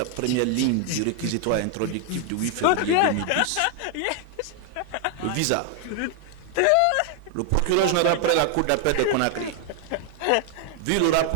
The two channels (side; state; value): both; different; correlation 0.00